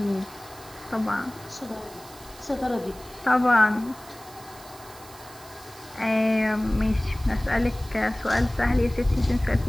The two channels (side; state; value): right; noise; hiss, 20 dB below the sound